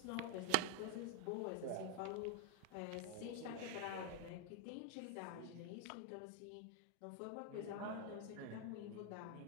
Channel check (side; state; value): both; different; correlation 0.00